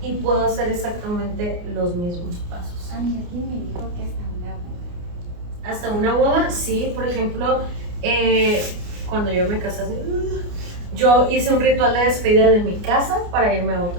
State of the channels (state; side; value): late; left; 29 ms